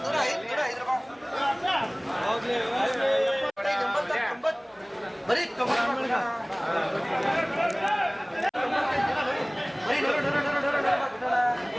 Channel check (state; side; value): identical; both; correlation 1.00